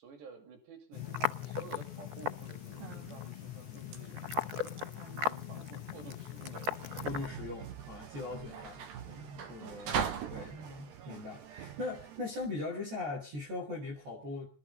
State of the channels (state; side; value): late; left; 14 ms